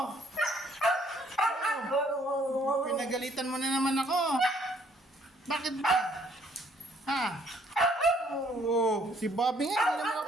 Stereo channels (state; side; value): normal; both; correlation 0.64